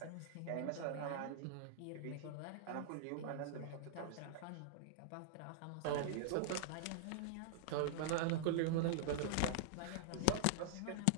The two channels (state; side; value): different; both; correlation -0.01